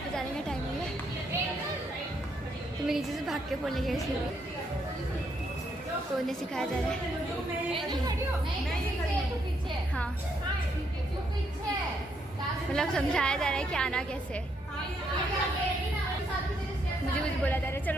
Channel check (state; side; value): normal; both; correlation 0.75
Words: पे जाने का टाइम हो गया, तो मैं नीचे से भाग के फोन गया इसलिए, तो उन्हें सिखाया जा रहा है। हाँ मतलब समझाया जा रहा है कि आना कैसे। मुझे कुछ बोला जा रहा है,